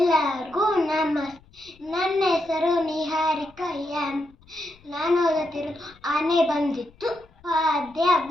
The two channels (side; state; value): left; noise; rumble, 28 dB below the sound